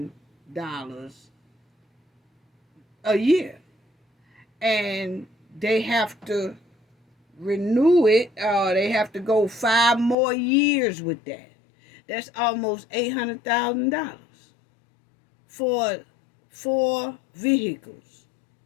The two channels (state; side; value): drops out; right; at 10.2 s